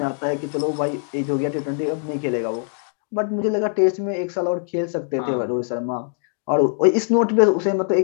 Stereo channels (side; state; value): right; silent; 64 dB below the other